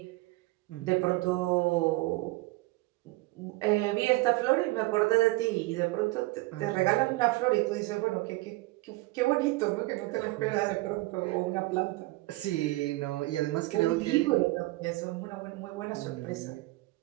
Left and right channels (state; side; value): quieter; left; 21.2 dB